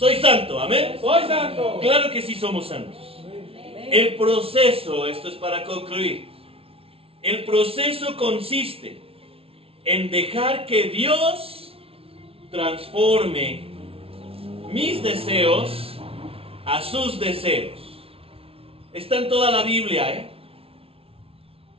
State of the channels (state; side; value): late; left; 0.27 ms